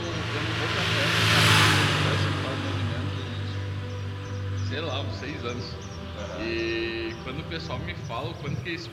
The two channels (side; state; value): both; identical; correlation 1.00